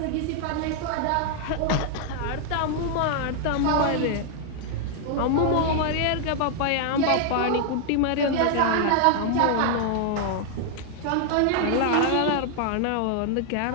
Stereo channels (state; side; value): different; both; correlation 0.00